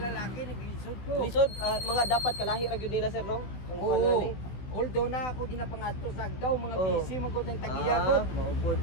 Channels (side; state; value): right; late; 15 ms